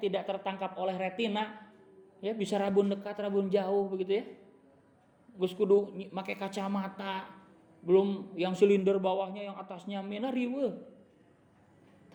tidak tertangkap oleh retina. Ya bisa rabun dekat, rabun jauh begitu ya. Gus kudu make kacamata. Belum yang silinder bawahnya, yang atasnya mina riweuh.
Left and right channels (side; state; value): both; identical; correlation 1.00